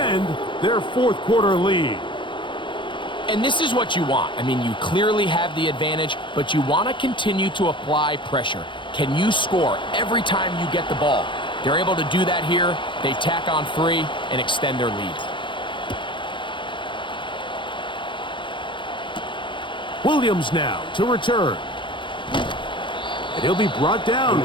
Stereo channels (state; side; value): late; right; 0.23 ms